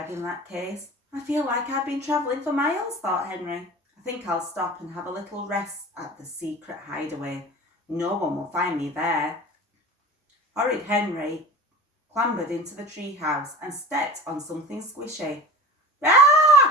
that case. I feel like I've been travelling for miles, thought Henry. I think I'll stop and have a little rest at the secret hideaway. No one will find me there. Horrid Henry clambered into the treehouse and stepped on something squishy.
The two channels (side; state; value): both; normal; correlation 0.35